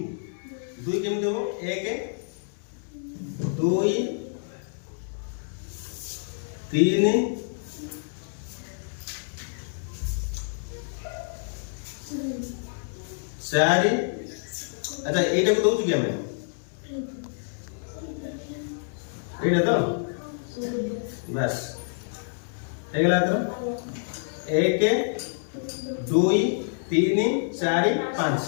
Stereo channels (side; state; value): right; silent; digital silence